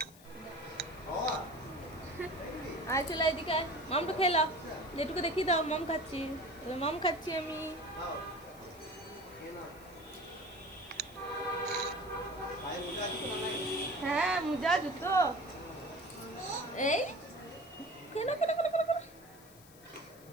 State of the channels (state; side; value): noise; left; hiss, 22 dB below the sound